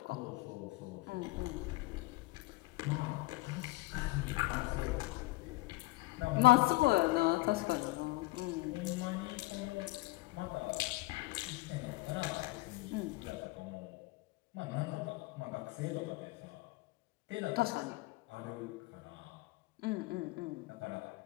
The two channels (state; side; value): quieter; right; 21.0 dB